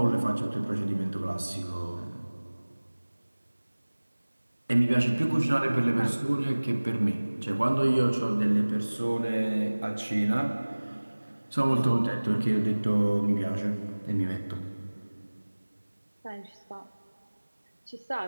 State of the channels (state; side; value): inverted; both; correlation -1.00